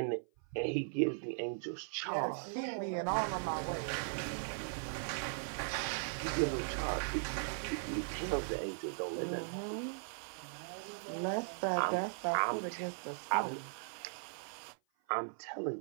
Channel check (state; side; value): silent; left; 52 dB below the other